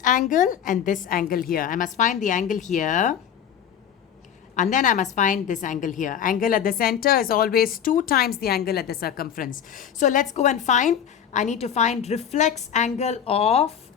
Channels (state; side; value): quieter; right; 8.7 dB